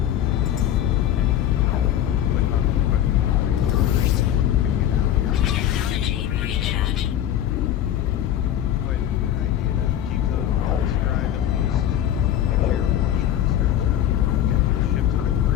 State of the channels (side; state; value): right; quieter; 11.1 dB